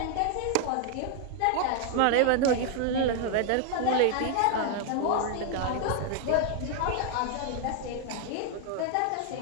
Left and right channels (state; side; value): different; both; correlation 0.00